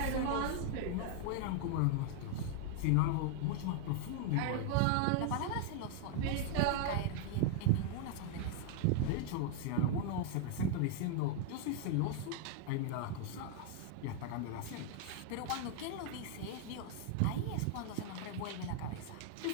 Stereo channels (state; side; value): different; both; correlation 0.00